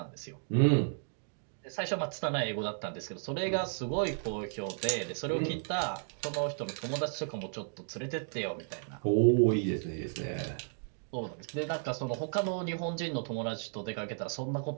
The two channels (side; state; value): left; silent; digital silence